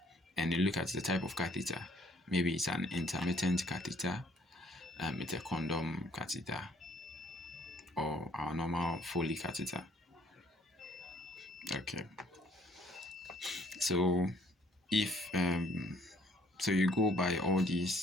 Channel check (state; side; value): normal; both; correlation 0.61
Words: And you look at the type of catheter. Maybe it's an intermittent catheter, it's a condom catheter, or our normal Foley catheter. Okay. So if so you go by all